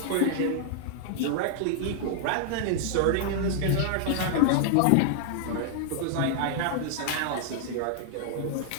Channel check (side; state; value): both; different; correlation -0.01